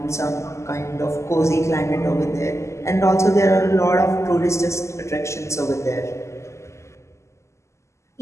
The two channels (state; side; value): late; right; 0.13 ms